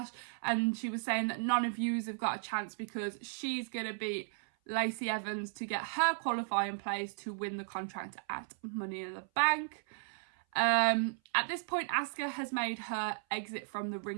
and she was saying that none of yous have got a chance because she's going to beat Lacey Evans to get her qualifying place to win the contract at Money in the Bank. At this point, Asuka has made her exit from the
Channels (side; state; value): left; silent; 54 dB below the other